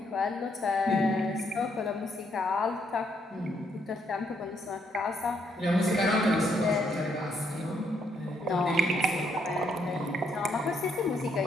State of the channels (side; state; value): both; normal; correlation 0.73